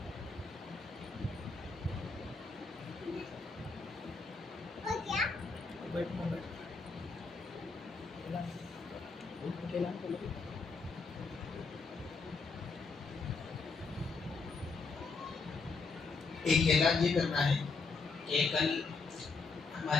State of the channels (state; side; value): quieter; right; 4.3 dB